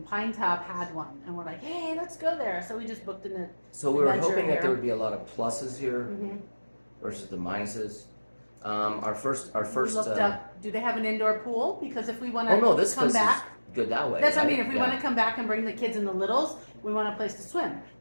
Pinetop had one, and we're like, hey, let's go there. So we just booked in the. So we were adventure hoping that here. there would be a lot of pluses here Mhm. versus the minuses. Our first. We looked up. Do they have an indoor pool? Because if we want to Oh no, this come place back, is good that way. that's what I right? mean. If we Yeah. want to come back and bring the kids and the littles, we want a place to swim.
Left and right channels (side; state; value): both; inverted; correlation -1.00